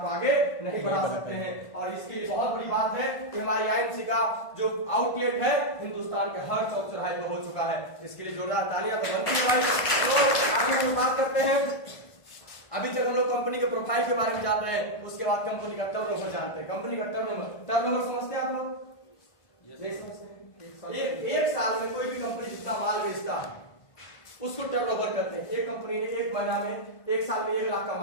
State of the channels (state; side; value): late; right; 1.5 ms